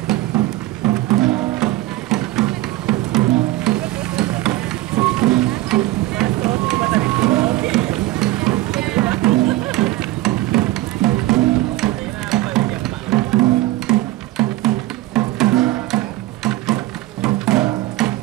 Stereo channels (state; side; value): quieter; left; 17.4 dB